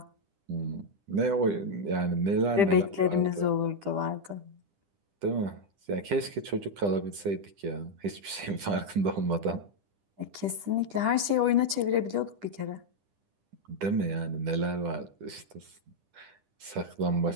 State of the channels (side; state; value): left; late; 10 ms